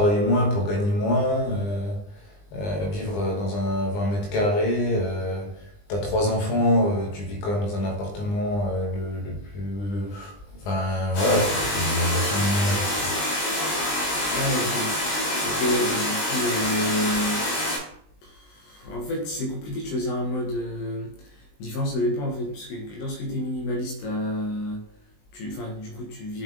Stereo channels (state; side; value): late; right; 20 ms